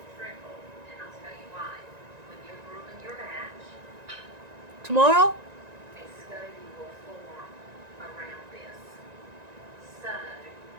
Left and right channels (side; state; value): left; late; 1.9 ms